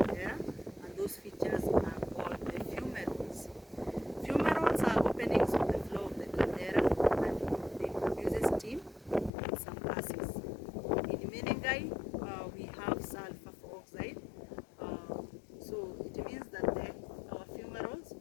and those features are called the fumaroles. Fumaroles are openings on the floor of the caldera, and they produce steam and some gases. In Menengai, we have sulfur oxide, so it means that our fumaroles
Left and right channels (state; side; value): drops out; right; at 9.3 s